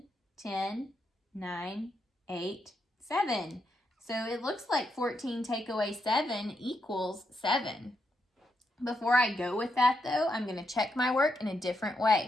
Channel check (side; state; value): both; normal; correlation 0.82